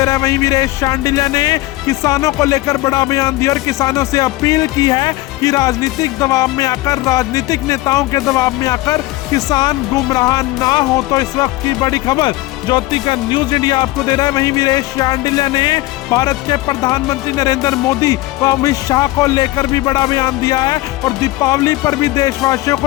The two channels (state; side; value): quieter; right; 18.7 dB